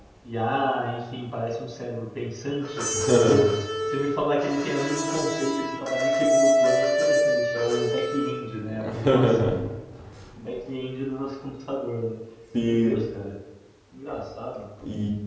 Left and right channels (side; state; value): both; identical; correlation 1.00